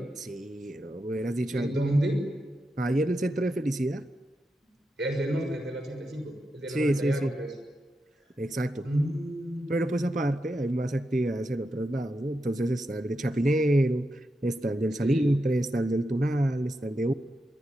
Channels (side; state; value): both; normal; correlation 0.87